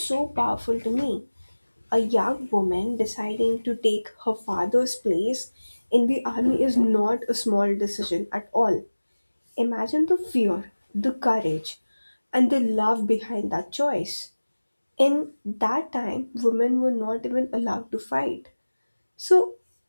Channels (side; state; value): both; inverted; correlation -1.00